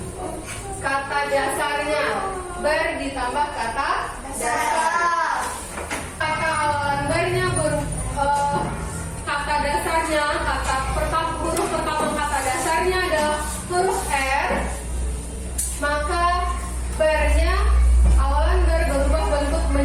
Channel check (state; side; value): identical; both; correlation 1.00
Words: kata dasarnya, ber ditambah kata dasar. Kata awalan bernya kata dasarnya, kata pertama, huruf pertama kata dasarnya adalah huruf R, maka bernya awalan ber berubah bentuk